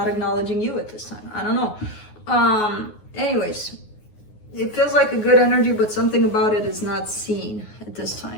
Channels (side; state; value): right; late; 9.5 ms